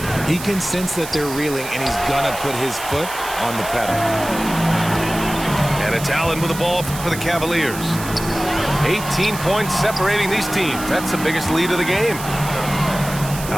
He can sense that they're reeling, and he's going to put his foot on the pedal. And it's Allen with the ball for the Cavaliers. 18 points separating these teams. That's the biggest lead of the game.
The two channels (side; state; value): right; noise; hiss, 11 dB below the sound